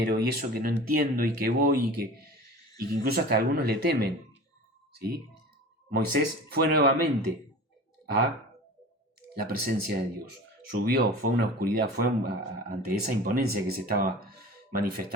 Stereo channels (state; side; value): normal; both; correlation 0.37